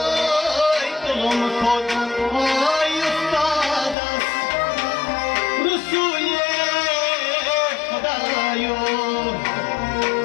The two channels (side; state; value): right; drops out; at 4.0 s